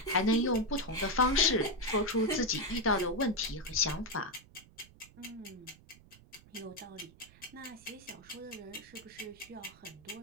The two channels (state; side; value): noise; right; rumble, 24 dB below the sound